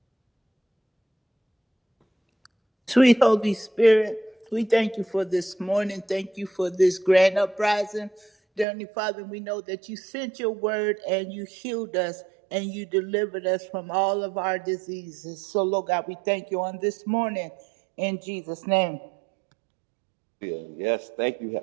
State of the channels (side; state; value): left; drops out; at 8.7 s